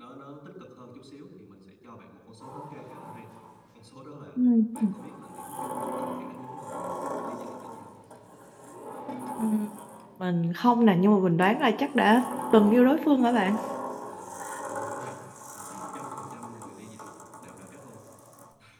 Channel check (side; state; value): both; identical; correlation 1.00